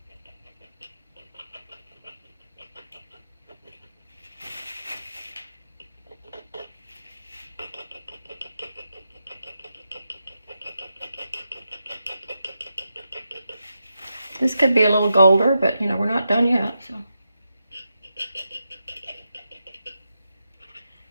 This could be a little golder, but you know, we're not done yet, so.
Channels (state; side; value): inverted; both; correlation -0.87